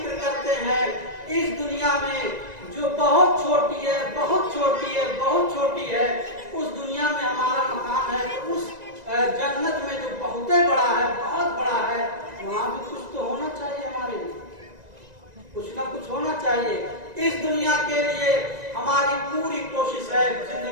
करते हैं। इस दुनिया में जो बहुत छोटी है, बहुत छोटी है, बहुत छोटी है, उस दुनिया में हमारा मकान है, तो उस जन्नत में जो बहुत बड़ा है, बहुत बड़ा है, वहाँ भी कुछ तो होना चाहिए हमारे लिए, कुछ ना कुछ होना चाहिए। इस दुनिया के लिए हमारी पूरी कोशिश है,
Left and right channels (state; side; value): late; left; 1.9 ms